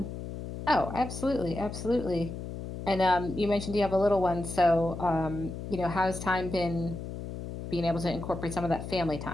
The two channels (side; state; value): left; noise; hum, 8 dB below the sound